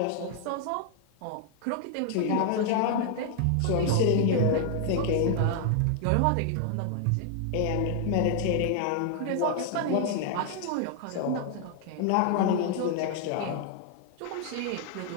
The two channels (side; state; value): both; different; correlation 0.00